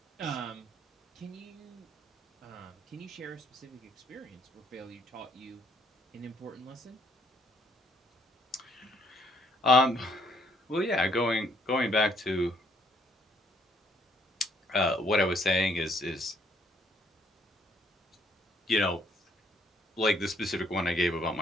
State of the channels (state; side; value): normal; both; correlation 0.66